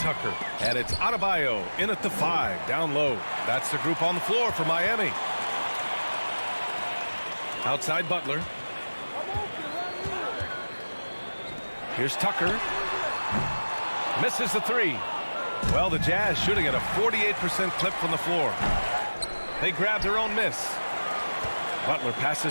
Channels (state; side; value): inverted; both; correlation -1.00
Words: And it's Adebayo in at the 5, down low. That's the group on the floor for Miami. Outside Butler. Here's Tucker. Misses the 3. Well, the Jazz shooting at a 48% clip from the floor. They grab their own miss. Butler